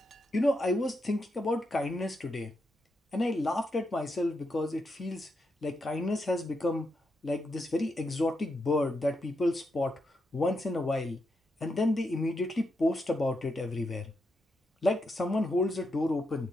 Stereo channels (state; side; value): normal; both; correlation 0.83